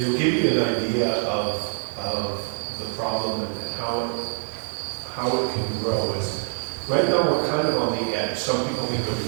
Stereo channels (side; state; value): left; silent; 57 dB below the other